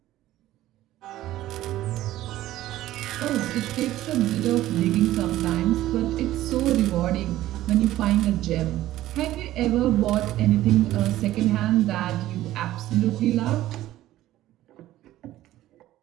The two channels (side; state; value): left; quieter; 14.6 dB